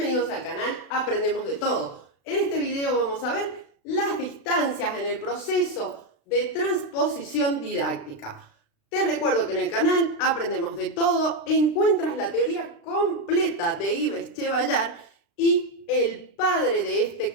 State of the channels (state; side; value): late; right; 36 ms